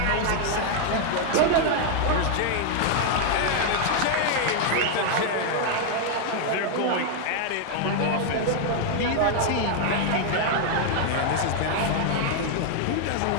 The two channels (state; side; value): different; both; correlation 0.00